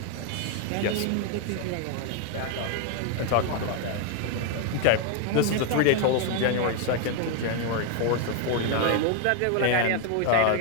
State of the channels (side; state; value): both; different; correlation 0.01